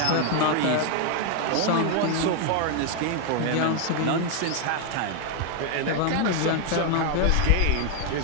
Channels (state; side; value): different; both; correlation 0.01